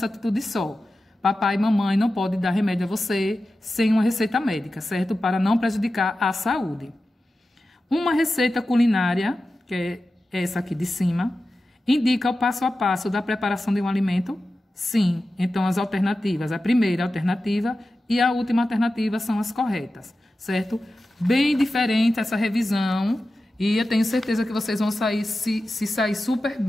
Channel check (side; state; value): both; normal; correlation 0.93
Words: atitude só. Papai e mamãe não podem dar remédio a você sem uma receita médica, certo? Para não prejudicar a saúde. Uma receita culinária, que é essa aqui de cima, indica o passo a passo da preparação de um alimento? Sim. Então, as alternativas, a primeira alternativa e a última alternativa são as corretas, certo? Bem diferente essa revisão e eu tenho certeza que vocês vão sair, se sair super